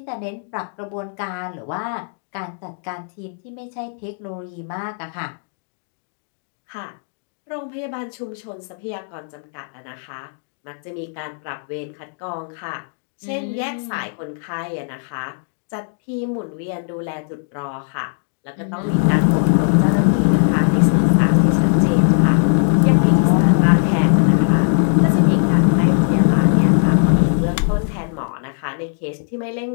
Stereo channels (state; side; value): silent; right; digital silence